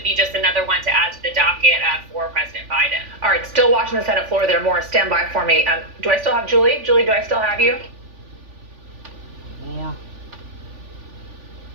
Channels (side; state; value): left; late; 3.4 ms